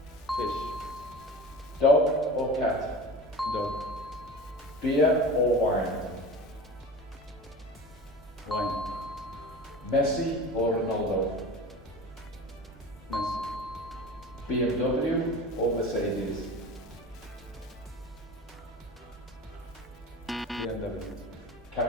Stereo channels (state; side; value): normal; both; correlation 0.35